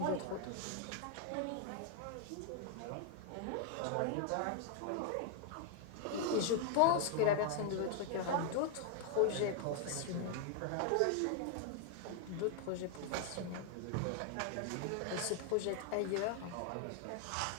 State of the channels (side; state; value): both; different; correlation 0.00